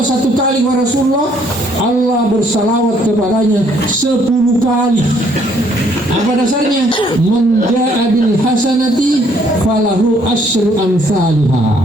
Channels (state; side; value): normal; both; correlation 0.65